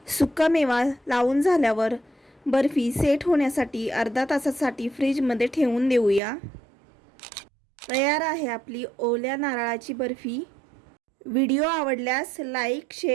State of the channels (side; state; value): left; drops out; at 6.2 s